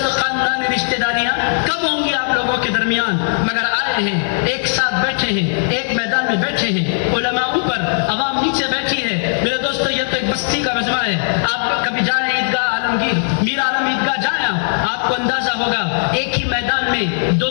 خاندانی رشتہ داریاں کم ہوں گی آپ لوگوں کے درمیان مگر آئے ہیں ایک ساتھ بیٹھے ہیں ایک میدان میں بیٹھے ہیں. علماء اوپر عوام نیچے بیٹھی ہے. میرے دوستو یہ تو ایک بستی کا مجمع ہے. آپ کبھی جائیں عیدگاہ عالمگیر میر عالم عیدگاہ جائیں آپ کو اندازہ ہوگا ایک ہی میدان میں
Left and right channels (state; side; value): silent; right; 63 dB below the other